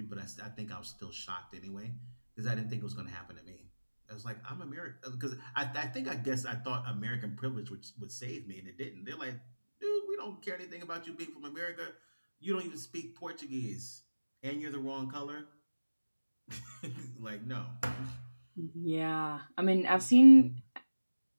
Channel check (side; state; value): both; inverted; correlation -1.00